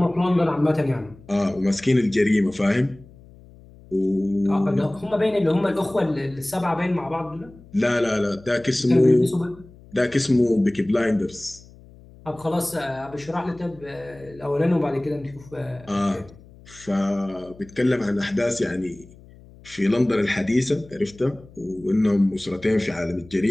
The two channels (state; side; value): noise; left; hum, 23 dB below the sound